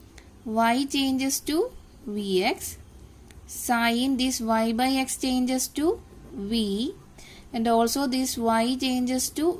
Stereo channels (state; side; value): identical; both; correlation 1.00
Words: y changes to vx, sin this y by x changes to v, and also this y changes to